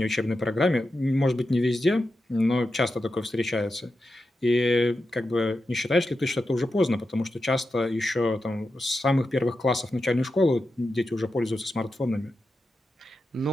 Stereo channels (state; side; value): normal; both; correlation 0.90